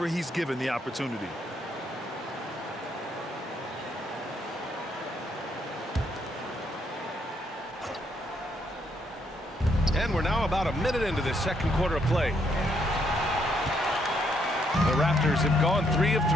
he's given the opportunity. And we're now about a minute into this second quarter of play. The Raptors have gone 3 of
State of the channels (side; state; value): both; normal; correlation 0.73